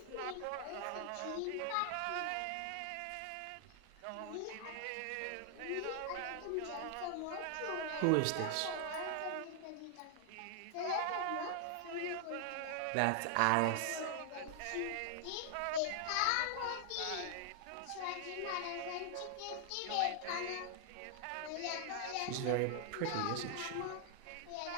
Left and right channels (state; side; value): different; both; correlation 0.00